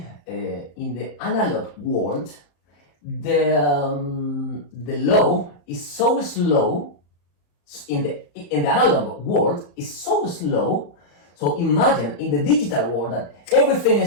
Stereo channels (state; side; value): late; right; 35 ms